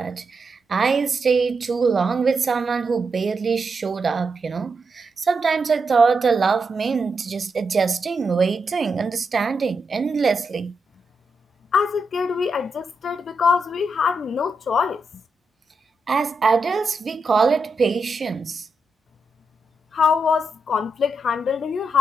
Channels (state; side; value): normal; both; correlation 0.84